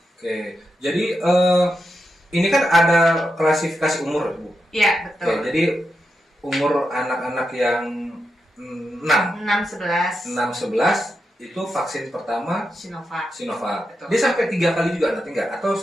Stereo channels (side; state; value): both; normal; correlation 0.87